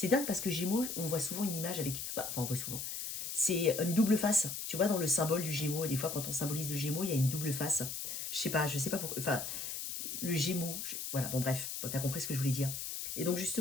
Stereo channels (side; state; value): left; noise; hiss, 5 dB below the sound